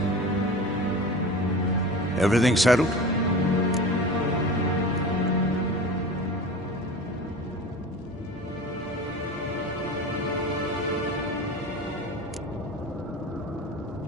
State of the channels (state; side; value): normal; both; correlation 0.33